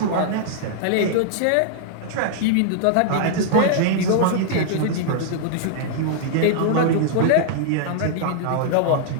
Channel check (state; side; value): different; both; correlation -0.01